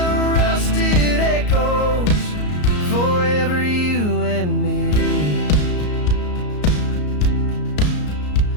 rusted echoes forever you and me.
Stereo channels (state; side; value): late; right; 34 ms